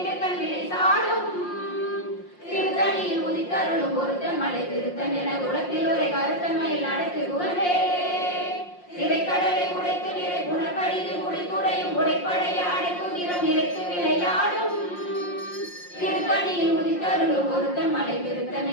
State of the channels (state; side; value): late; right; 5.6 ms